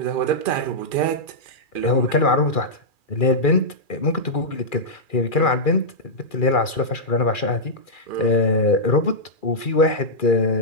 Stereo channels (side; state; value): right; late; 2.4 ms